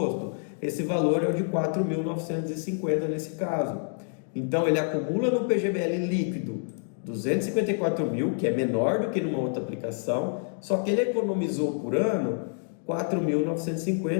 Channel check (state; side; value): silent; right; 60 dB below the other